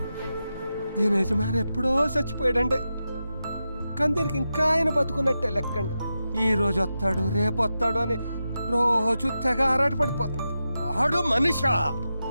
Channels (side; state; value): both; inverted; correlation -0.90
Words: దీని యజమాని ఎప్పుడో చచ్చిపోయాడండి, కానీ దీనికి ఇంకా ఆయన బతుకున్నట్టే లెక్కండి. ఈ రోజు వస్తాడు రేపు వస్తాడు అని రోజు తెగ ఆరాట పడిపోతుంది. ఆడు మనిషా,